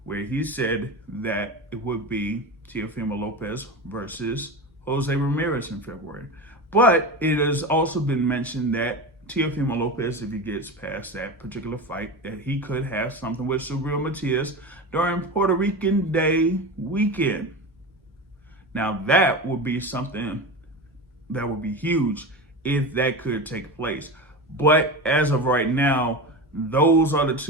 where he said that it would be Teofimo Lopez versus Jose Ramirez in February. But it has also been mentioned that Teofimo Lopez, if he gets past that particular fight, that he could have something with Subriel Matias during Puerto Rican Day weekend. Now that would be something that would be huge if that could take place. But as of right now, those are the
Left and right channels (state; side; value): normal; both; correlation 0.25